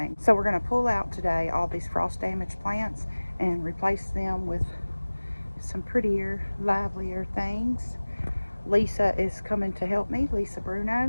So we're going to pull out today all these frost damaged plants and replace them with some prettier, livelier things. Lisa is coming to help me, Lisa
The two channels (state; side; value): inverted; both; correlation -1.00